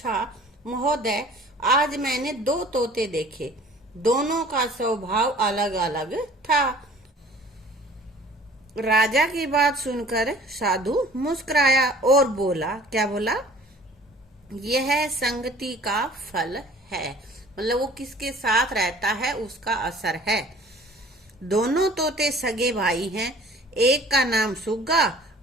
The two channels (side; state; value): both; normal; correlation 0.50